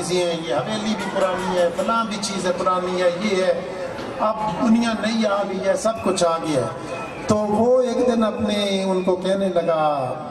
ہیں، یہ حویلی بھی پرانی ہے، فلاں بھی چیزیں پرانی ہے، یہ ہے، اب دنیا نئی آ گئی ہے، سب کچھ آ گیا ہے۔ تو وہ ایک دن ان کو کہنے لگا،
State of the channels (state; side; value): identical; both; correlation 1.00